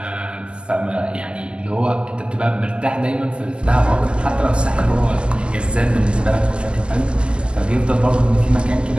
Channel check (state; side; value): late; left; 0.050 ms